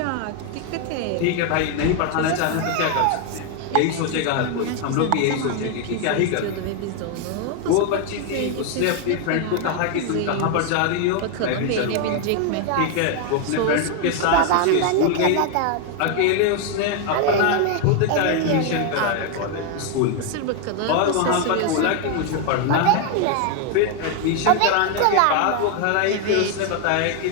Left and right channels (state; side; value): different; both; correlation 0.01